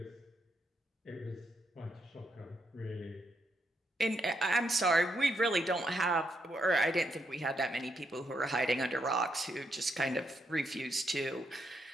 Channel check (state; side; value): normal; both; correlation 0.79